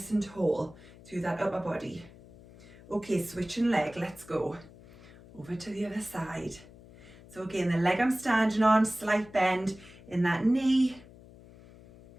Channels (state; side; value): noise; left; hum, 21 dB below the sound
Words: and tall through that upper body. Okay, switching leg, let's go. Over to the other side. So again, the leg I'm standing on, slight bend in that knee.